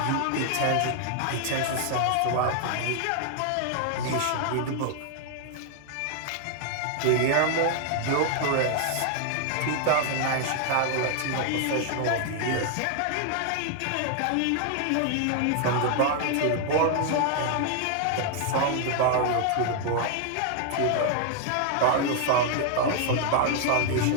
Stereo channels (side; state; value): both; different; correlation 0.00